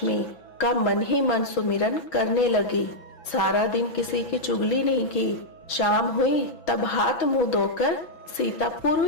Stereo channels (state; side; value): late; right; 6.1 ms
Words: का मन ही मन सुमिरन करने लगी। सारा दिन किसी की चुगली नहीं की। शाम हुई तब हाथ मुंह धोकर सीता